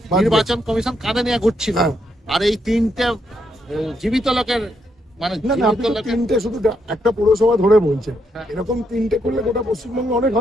নির্বাচন কমিশন কাঁধে নিয়ে ঘুরছিল। আর এই তিনটে জীবিত লোকের, মানে না না, আপনি তো তিনটে শুধু একটা পৌরসভা ধরে বলছেন, এরকম তিনটে করলে গোটা পশ্চিমবঙ্গে অনেক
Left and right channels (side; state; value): both; normal; correlation 0.77